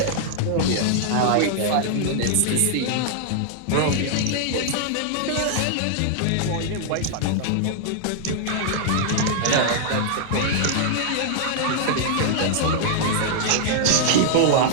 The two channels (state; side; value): different; both; correlation -0.01